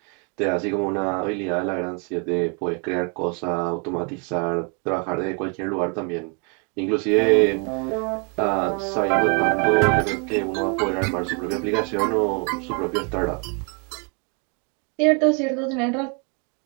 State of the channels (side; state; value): left; quieter; 36.1 dB